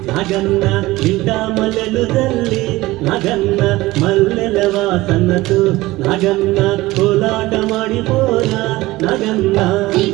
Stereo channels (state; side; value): quieter; left; 19.0 dB